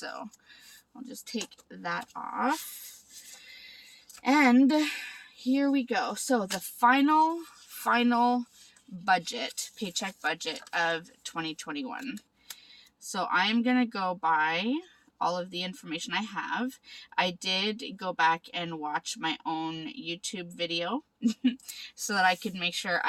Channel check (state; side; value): identical; both; correlation 1.00